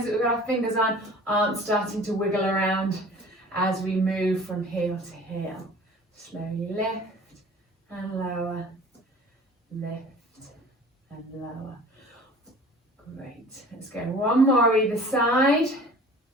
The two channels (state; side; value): normal; both; correlation 0.45